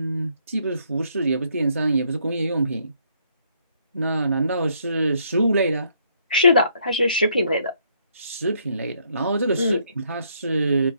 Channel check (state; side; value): inverted; both; correlation -0.70